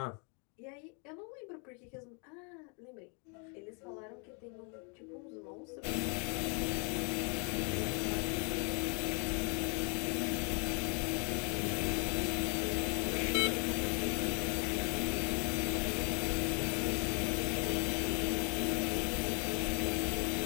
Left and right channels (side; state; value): right; quieter; 37.1 dB